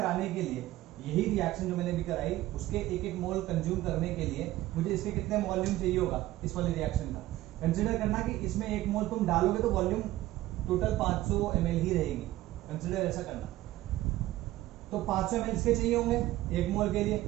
के लिए, यही रिएक्शन जो मैंने भी कराई, उसके 1 मोल कंज्यूम करने के लिए मुझे इसके कितने वॉल्यूम चाहिए होगा इस वाले रिएक्शन का। कंसीडर करना कि इसमें 1 मोल तुम डालोगे तो वॉल्यूम टोटल 500 ml ही रहेगी, कंसीडर ऐसा करना। तो 500 ml इसके चाहिए होंगे 1 मोल के लिए,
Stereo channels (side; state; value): left; quieter; 16.1 dB